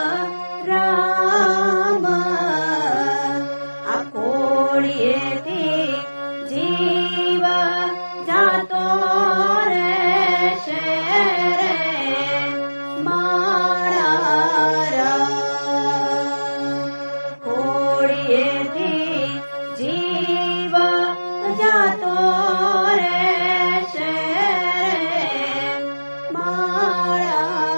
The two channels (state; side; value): inverted; both; correlation -1.00